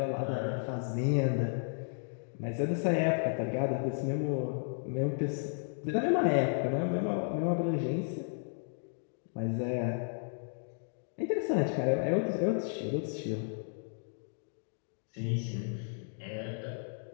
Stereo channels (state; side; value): silent; right; digital silence